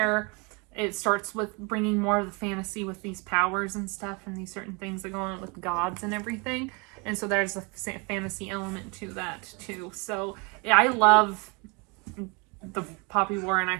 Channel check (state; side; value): quieter; left; 30.4 dB